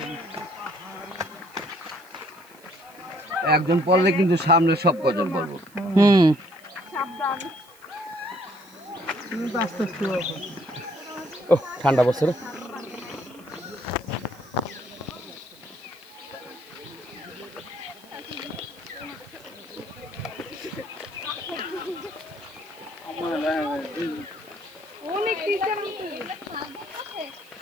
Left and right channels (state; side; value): noise; right; hiss, 26 dB below the sound